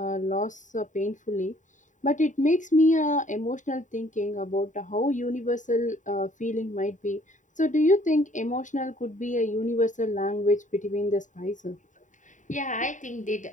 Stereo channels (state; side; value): late; right; 0.36 ms